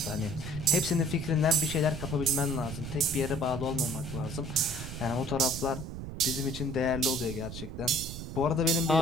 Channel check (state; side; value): noise; right; rumble, 8 dB below the sound